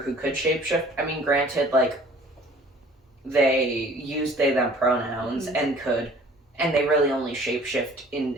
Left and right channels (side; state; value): both; normal; correlation 0.51